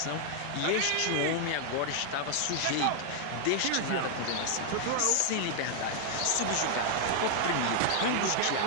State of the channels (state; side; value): different; both; correlation 0.00